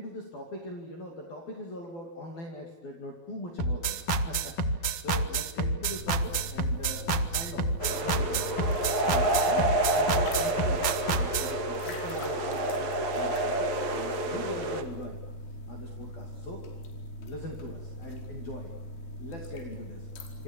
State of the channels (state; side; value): late; right; 11 ms